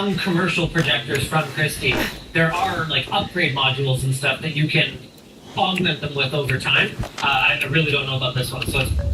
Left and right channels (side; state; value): both; identical; correlation 1.00